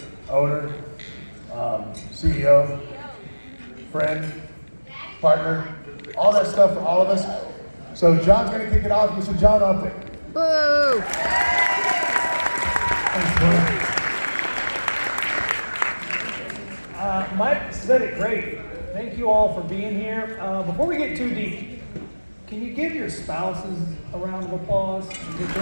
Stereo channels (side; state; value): both; inverted; correlation -1.00